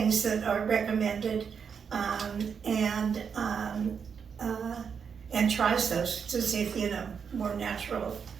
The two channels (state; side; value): quieter; left; 6.6 dB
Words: that are recommended, and tries those to see if, more natural